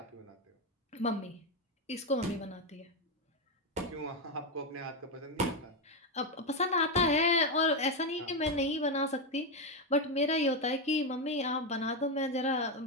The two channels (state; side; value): normal; both; correlation 0.08